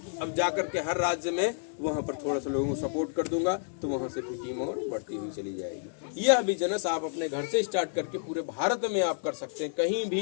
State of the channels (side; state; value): right; silent; digital silence